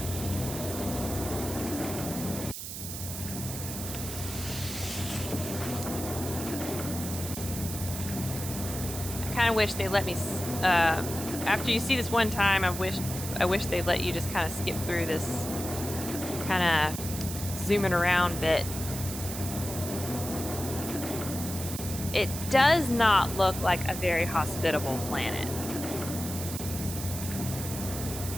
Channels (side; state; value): right; noise; hiss, 7 dB below the sound